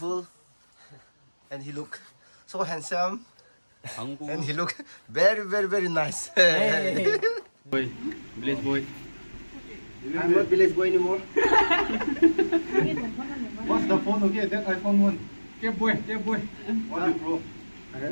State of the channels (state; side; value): inverted; both; correlation -1.00